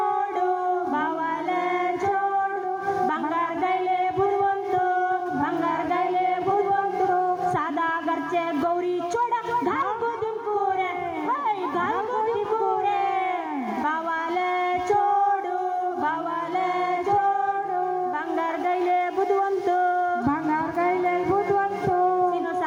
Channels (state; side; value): identical; both; correlation 1.00